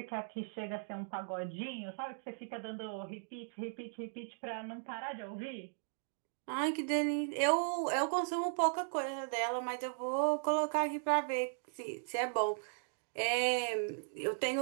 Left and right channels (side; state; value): left; silent; digital silence